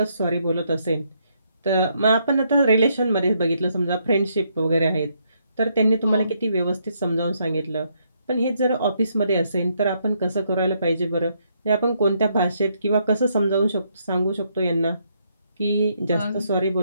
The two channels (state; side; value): inverted; both; correlation -0.74